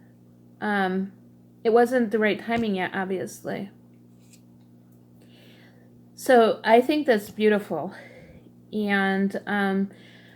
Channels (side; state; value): both; identical; correlation 1.00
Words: it wasn't the right timing yet, obviously. So I think that's beautiful, and